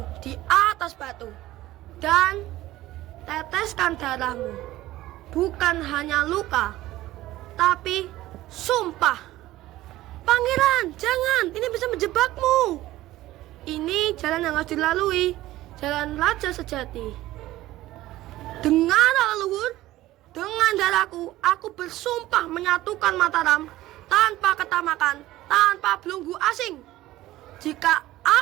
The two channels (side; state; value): left; quieter; 16.1 dB